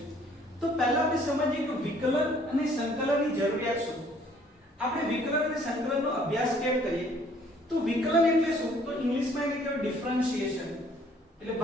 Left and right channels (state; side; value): normal; both; correlation 0.59